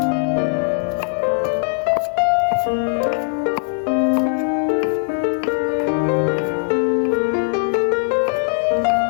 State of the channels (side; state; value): right; silent; 66 dB below the other